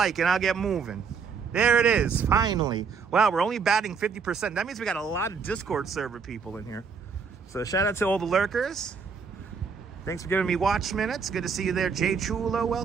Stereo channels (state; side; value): quieter; left; 5.8 dB